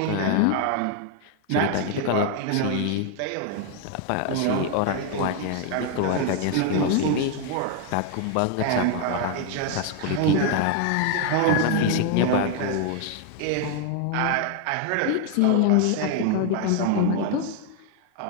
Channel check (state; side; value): different; both; correlation 0.01